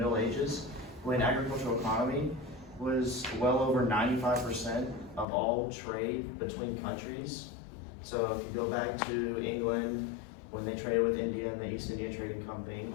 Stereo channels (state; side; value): drops out; right; at 5.2 s